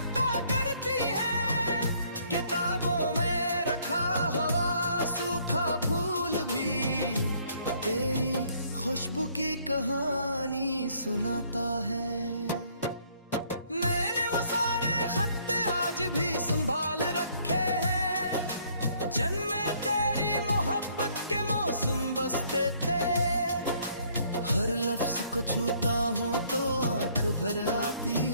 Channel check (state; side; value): inverted; both; correlation -0.64